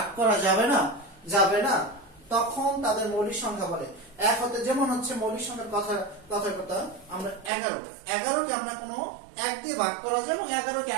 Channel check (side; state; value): left; drops out; at 7.5 s